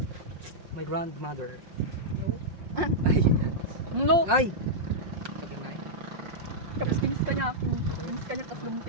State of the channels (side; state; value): left; late; 5.5 ms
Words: My grandmother. No? Ay. No! Ay! Sabi na eh. Tapos kinis ka niya ako. Kinis ka niya, tapos